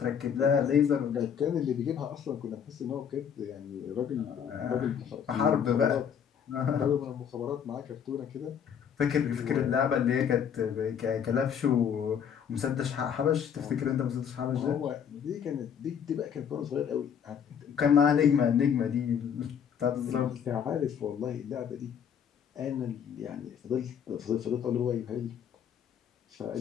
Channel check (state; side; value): quieter; right; 8.0 dB